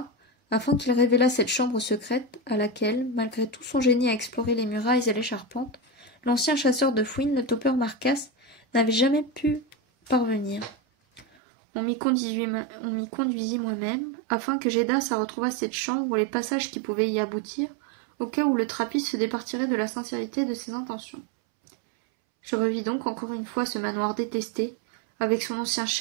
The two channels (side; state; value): left; drops out; at 11.2 s